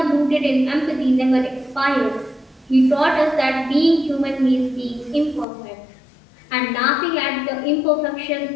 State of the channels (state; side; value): drops out; right; at 5.5 s